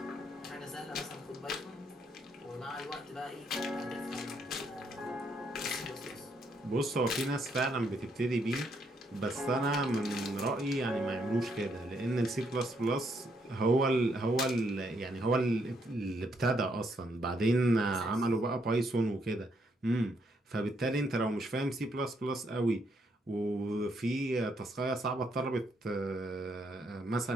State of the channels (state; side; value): normal; both; correlation 0.74